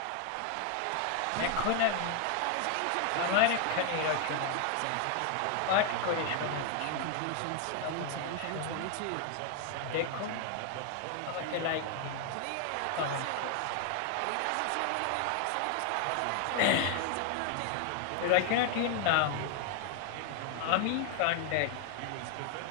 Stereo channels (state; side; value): different; both; correlation 0.00